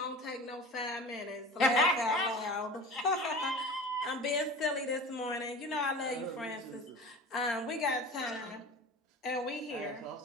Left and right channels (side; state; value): both; normal; correlation 0.36